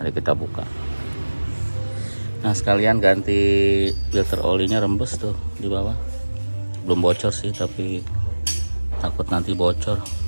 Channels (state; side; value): inverted; both; correlation -1.00